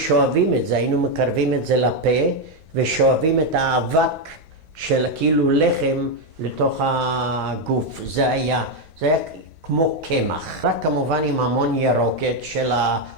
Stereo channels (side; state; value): left; late; 6.0 ms